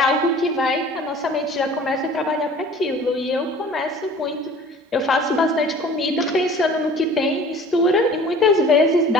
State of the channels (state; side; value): normal; both; correlation 0.47